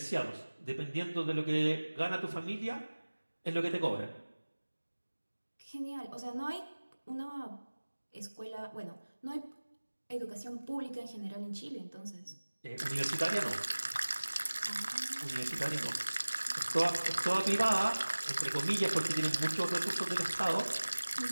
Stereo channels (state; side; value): inverted; both; correlation -1.00